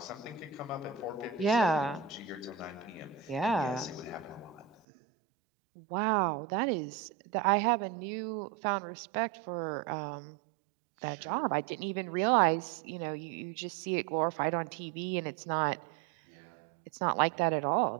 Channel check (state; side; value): drops out; left; at 4.8 s